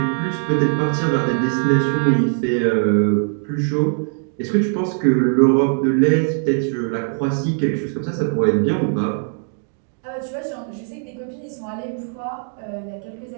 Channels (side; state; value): left; silent; 57 dB below the other